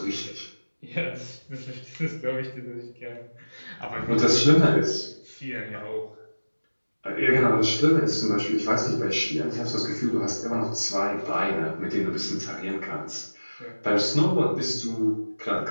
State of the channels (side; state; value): both; inverted; correlation -1.00